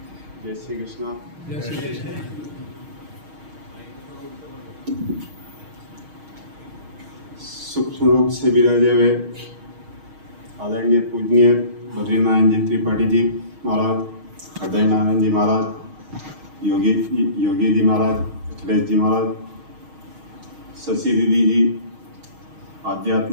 जय श्री कृष्णा। जय श्री कृष्ण। सूक्ष्म रूप से विराजे हुए आदरणीय पूजनीय बद्रीनारायण जी त्रिपाठी जी महाराज, हृदय नारायण जी महाराज, योगी जी महाराज, अखिलेश जी महाराज, शशि दीदी जी,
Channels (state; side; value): late; left; 6.4 ms